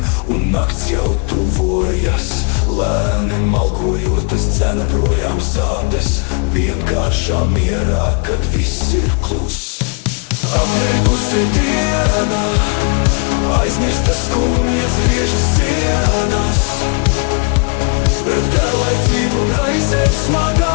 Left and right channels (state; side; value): quieter; right; 36.4 dB